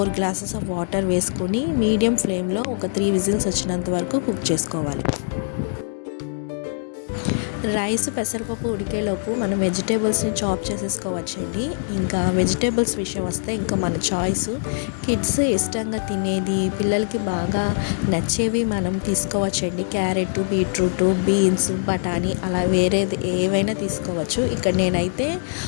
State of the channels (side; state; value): right; silent; digital silence